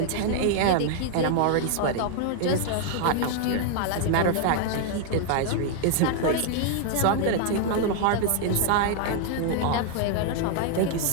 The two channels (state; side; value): different; both; correlation 0.00